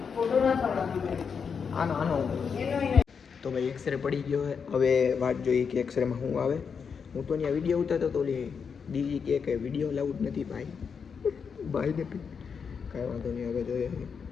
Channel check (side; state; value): right; quieter; 6.2 dB